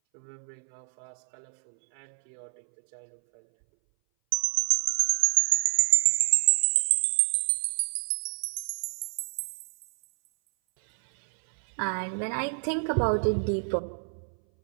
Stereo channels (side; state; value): left; silent; 60 dB below the other